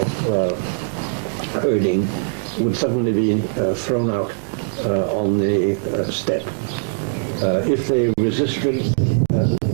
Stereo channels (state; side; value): silent; left; digital silence